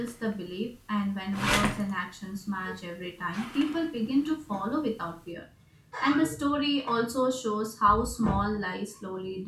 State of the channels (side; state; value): both; identical; correlation 1.00